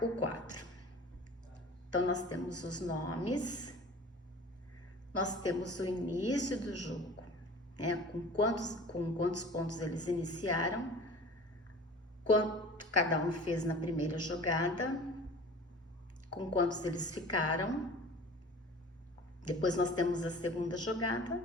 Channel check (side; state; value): both; normal; correlation 0.42